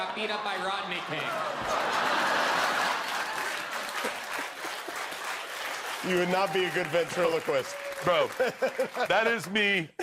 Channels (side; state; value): both; identical; correlation 1.00